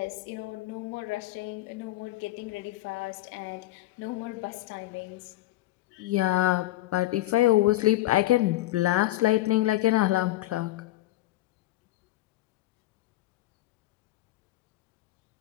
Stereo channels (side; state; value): right; quieter; 16.3 dB